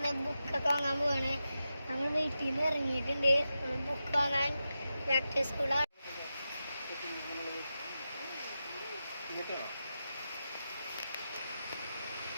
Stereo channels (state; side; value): inverted; both; correlation -0.91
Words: ബുക്കൊക്കെ വാങ്ങാൻ പോവാണ്. നമ്മൾ വീട്ടിൽ നിന്ന് ഇറങ്ങിയിട്ടുണ്ട്. ബുക്ക് വാങ്ങാൻ ബാക്ക് സ്കൂളാണ്.